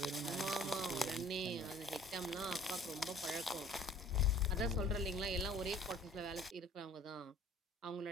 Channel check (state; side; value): normal; both; correlation 0.52